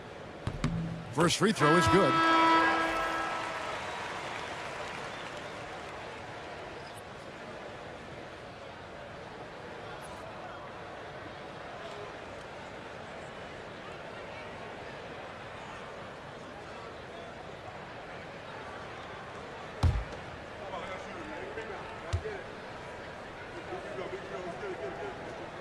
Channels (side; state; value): both; identical; correlation 1.00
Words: First free throw is good.